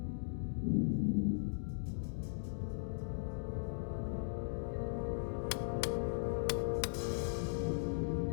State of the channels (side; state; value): right; silent; digital silence